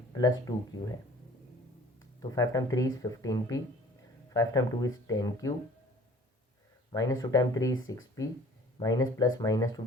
प्लस 2q है। तो 5 time 3 is 15p, 5 time 2 is 10q, minus 2 time 3 is 6p, minus plus minus 2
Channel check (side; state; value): both; normal; correlation 0.50